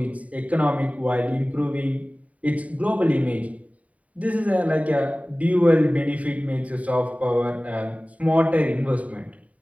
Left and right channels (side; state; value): left; late; 0.069 ms